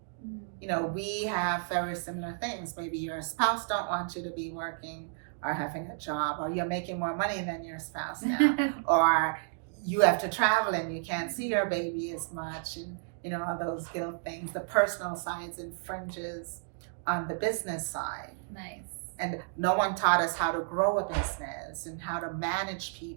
You know, we have very similar things. Maybe your spouse don't want you to be working or having a job, or you're making more money than your spouse now, or you have to travel and you can't see your baby as much, and you know, all those guilt things. The personal sides infringes on the business side. Nice. And no one taught us how to grow a business and how to manage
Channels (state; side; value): silent; left; digital silence